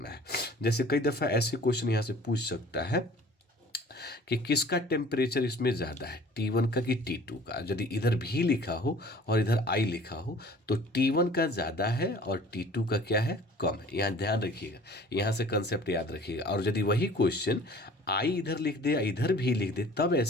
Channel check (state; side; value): normal; both; correlation 0.49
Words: है। जैसे कई दफ़ा ऐसे क्वेश्चन यहाँ से पूछ सकता है कि किसका टेम्परेचर इसमें ज़्यादा है, T1 का कि T2 का। यदि इधर भी लिखा हो और इधर I लिखा हो तो T1 का ज़्यादा है और T2 का क्या है? कम है। यहाँ ध्यान रखिएगा, यहाँ से कंसेप्ट याद रखिएगा। और यदि वही क्वेश्चन I इधर लिख दे, इधर भी लिख दे, तब